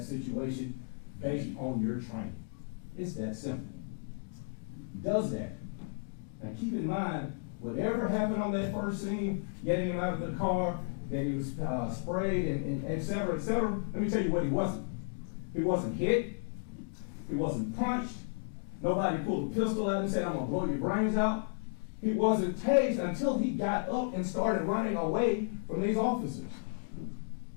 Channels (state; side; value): silent; right; digital silence